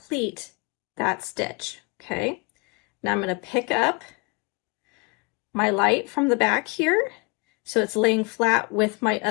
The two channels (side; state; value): right; quieter; 29.7 dB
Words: that stitch, okay? Now I'm going to pick up my light from the back here, so it's laying flat with my